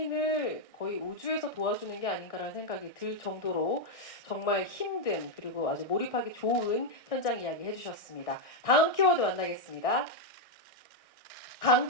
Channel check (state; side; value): late; right; 1.6 ms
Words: 거의 우주에서 도와주는 게 아닌가라는 생각이 들 정도로 정말 힘든 그리고 아주 몰입하기 좋은 현장 이야기 해주셨습니다. 다음 키워드 만나겠습니다.